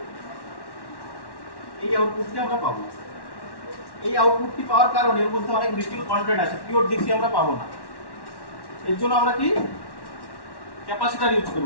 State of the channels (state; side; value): late; right; 1.1 ms